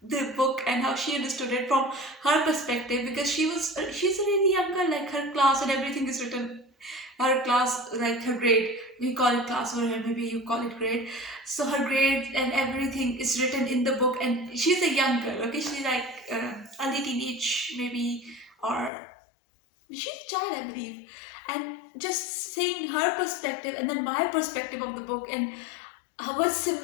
the book and how she understood it from her perspective, because she's a really young girl, like her class and everything is written, her class, like her grade, we call it class over here, maybe you call it grade. So her grade and everything is written in the book, and she's a young girl, okay, she's like early teenage maybe, or she's a child, I believe. And just seeing her perspective and then my perspective of the book, and what's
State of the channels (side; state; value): right; drops out; at 18.9 s